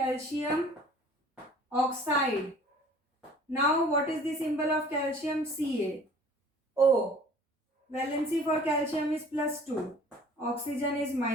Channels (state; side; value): normal; both; correlation 0.50